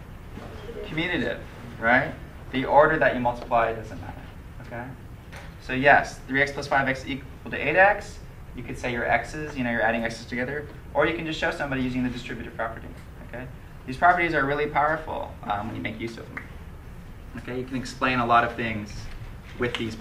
Commutative, right? The order that you multiply doesn't matter, okay? So yes, 3x plus 5x equal to 8x. You could say your x's, you're adding x's together. Or you can just show somebody using the distributive property, okay? These properties are really powerful when you make use of them. Okay, you can explain a lot of things with these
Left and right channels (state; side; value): identical; both; correlation 1.00